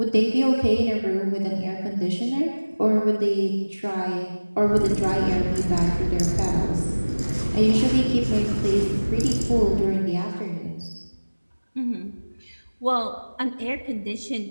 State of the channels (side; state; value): both; inverted; correlation -1.00